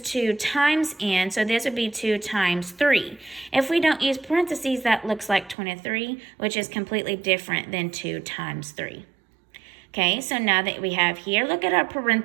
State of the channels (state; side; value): drops out; left; at 5.6 s